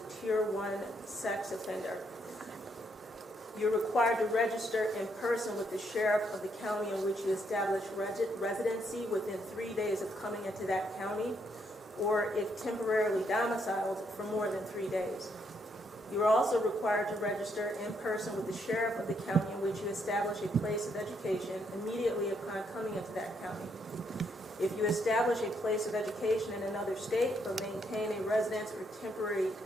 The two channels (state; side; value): normal; both; correlation 0.74